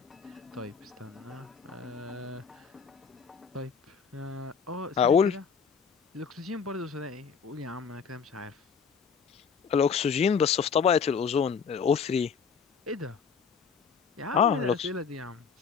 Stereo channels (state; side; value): quieter; right; 6.2 dB